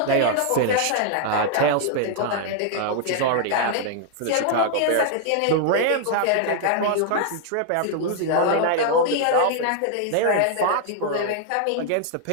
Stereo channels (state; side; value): different; both; correlation 0.00